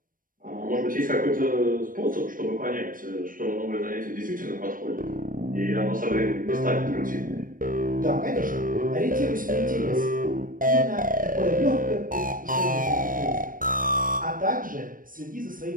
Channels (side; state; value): left; late; 0.40 ms